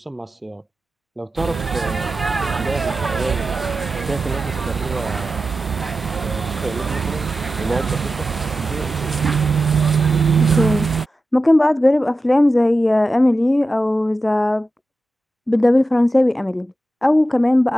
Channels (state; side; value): normal; both; correlation 0.92